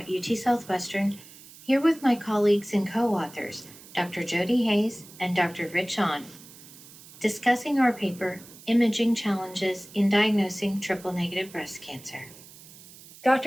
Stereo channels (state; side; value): noise; right; hiss, 20 dB below the sound